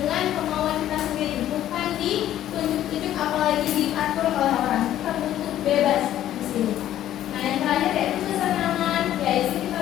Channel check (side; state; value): right; quieter; 12.3 dB